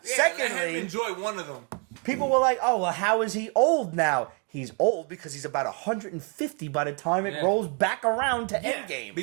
Secondly- let him enjoy one of them. People were like, oh, well, how is he old now? He's old because he's about 150 by the time it Yeah. rolls back around to Yeah. Endgame.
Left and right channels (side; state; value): left; quieter; 37.1 dB